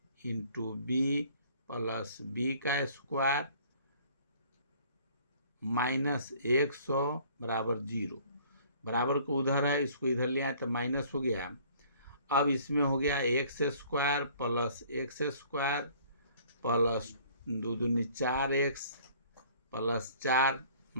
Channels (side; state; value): both; inverted; correlation -0.55